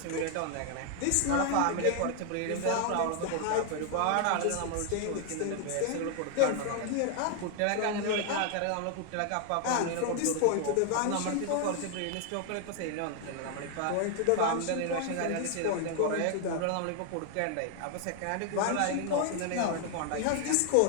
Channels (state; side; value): different; both; correlation 0.00